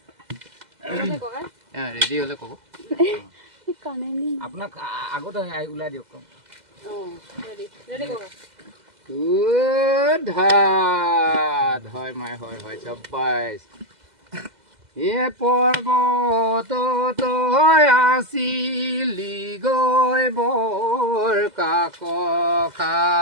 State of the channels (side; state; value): left; late; 2.0 ms